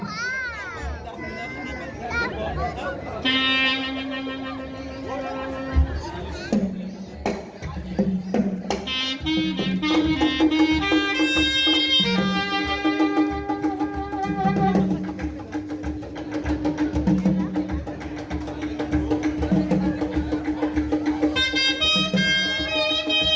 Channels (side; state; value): both; identical; correlation 1.00